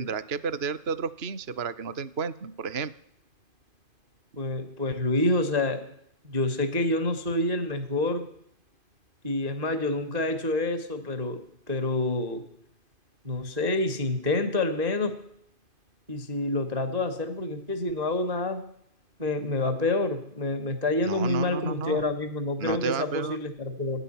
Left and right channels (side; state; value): left; late; 2.5 ms